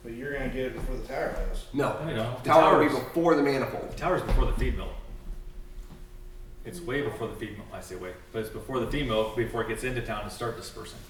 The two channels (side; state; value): both; identical; correlation 1.00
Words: But you're gonna get it before the tower does. No. You know, the Tower will be tower's, before the manifold. the tower's before the feed mill. It's way before the feed mill. I say way, but it's before the feed mill before it gets into town to start dispersing,